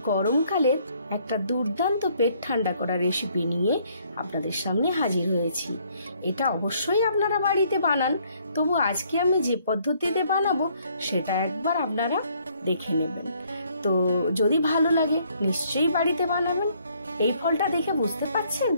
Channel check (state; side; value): inverted; both; correlation -0.66